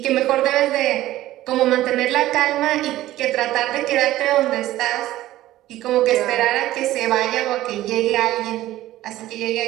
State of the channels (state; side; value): quieter; left; 15.1 dB